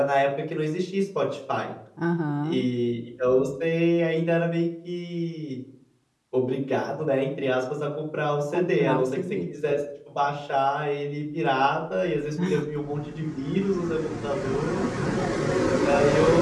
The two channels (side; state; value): both; identical; correlation 1.00